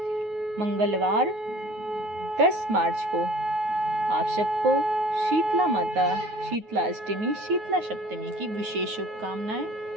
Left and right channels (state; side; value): late; left; 9.4 ms